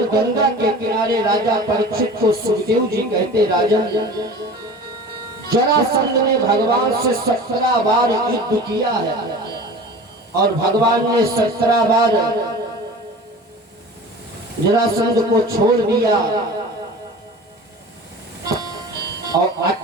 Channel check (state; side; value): normal; both; correlation 0.38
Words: गंगा के किनारे राजा परीक्षित को सुखदेव जी कहते, राजन जरासंध ने भगवान से 17 बार युद्ध किया है और भगवान ने 17 बार जरासंध को छोड़ दिया। और